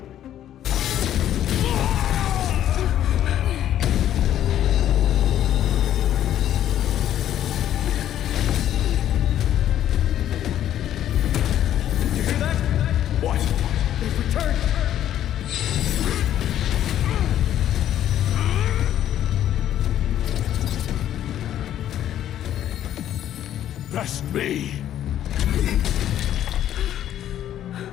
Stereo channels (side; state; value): right; quieter; 11.4 dB